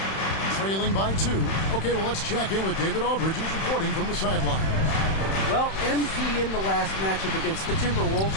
trailing by 2. Okay, well, let's check in with David Aldridge, who's reporting from the sideline. Well, MP in the last matchup against the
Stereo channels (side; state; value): right; late; 31 ms